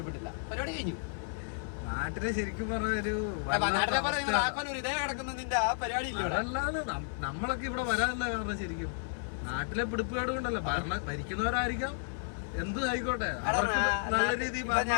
പരിപാടി കഴിഞ്ഞു. നാട്ടിലെ ശരിക്കും പറഞ്ഞൊരു നമ്മളൊക്കെ ഇവിടെ വരാനല്ല കാരണം. ശരിക്കും നാട്ടിലെ പിടിപ്പുകാട് കൊണ്ടല്ല, ഭരിക്കുന്നവരായിരിക്കാം, എന്തും ആയിക്കോട്ടെ, നല്ല രീതിയിൽ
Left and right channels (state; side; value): silent; right; 56 dB below the other